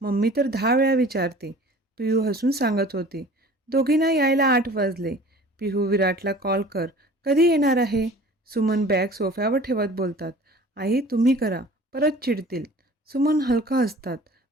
मम्मी तर 10 वेळा विचारते. पिहू हसून सांगत होती. दोघींना यायला 8 वाजले. पिहू, विराटला कॉल कर. कधी येणार आहे? सुमन बॅग सोफ्यावर ठेवत बोलतात. आई, तुम्ही करा, परत चिडतील. सुमन हलका हसतात.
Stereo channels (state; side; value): normal; both; correlation 0.45